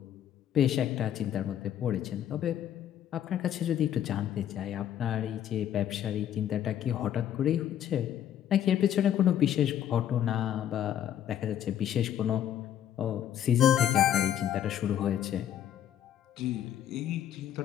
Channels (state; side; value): quieter; right; 10.5 dB